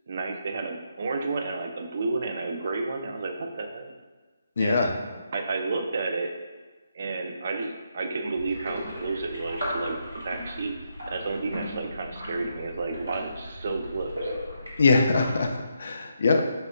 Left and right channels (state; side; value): inverted; both; correlation -0.79